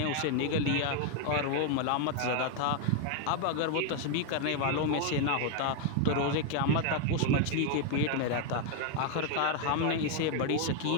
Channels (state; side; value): different; both; correlation 0.00